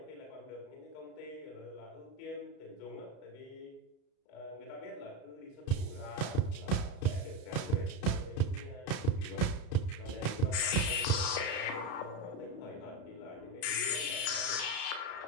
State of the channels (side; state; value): right; late; 33 ms